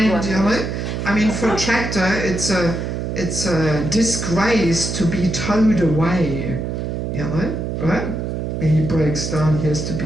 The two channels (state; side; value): noise; right; hum, 3 dB below the sound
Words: you know. I mean, for a tractor, it's a disgrace to be towed away, you know, right? When he breaks down, he has to be